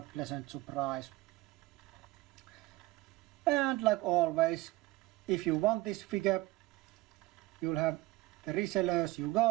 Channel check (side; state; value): left; quieter; 19.0 dB